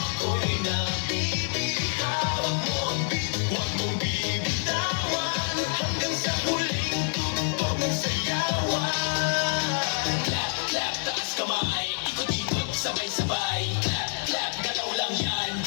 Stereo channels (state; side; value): silent; right; 60 dB below the other